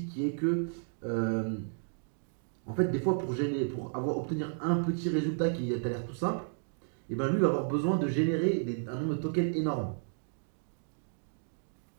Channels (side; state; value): left; silent; digital silence